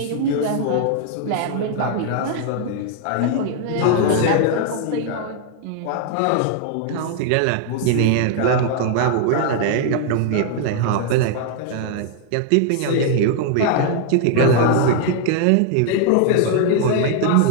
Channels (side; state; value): both; different; correlation 0.00